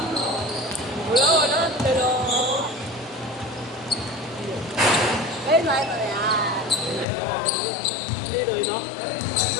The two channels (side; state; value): right; drops out; at 7.1 s